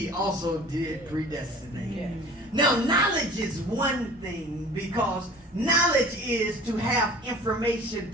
also did predestinate. Yeah. Now, knowledge is one thing, because knowledge is to have information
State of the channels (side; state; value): both; normal; correlation 0.45